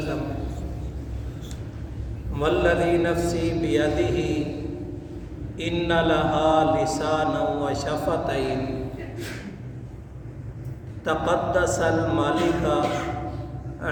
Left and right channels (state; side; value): identical; both; correlation 1.00